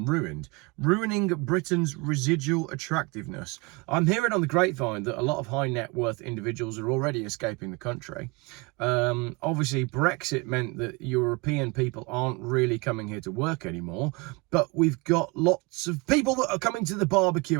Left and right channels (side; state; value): left; quieter; 26.9 dB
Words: ruined, ruining Britain's residual attractiveness. I'm hearing on the grapevine that a lot of high net worth individuals are already escaping the country. Obviously, Brexit meant that European people aren't really coming here to work anymore, but we've got lots of people that are coming to the